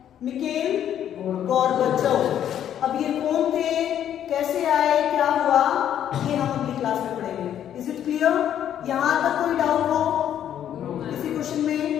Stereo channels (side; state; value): right; quieter; 10.2 dB